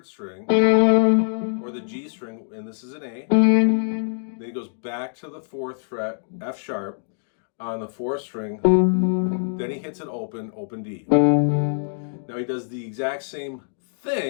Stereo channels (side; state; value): right; silent; digital silence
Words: string, or the G string, and this is an A. Then he goes back to the 4th fret, F sharp, on the 4th string. Then he hits it open D. Now he does the exact same